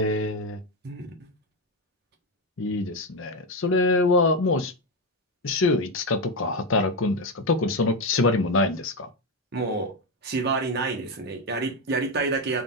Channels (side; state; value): both; normal; correlation 0.09